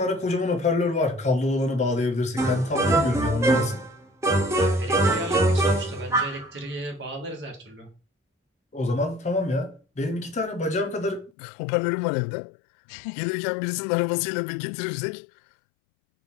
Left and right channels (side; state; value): right; drops out; at 11.3 s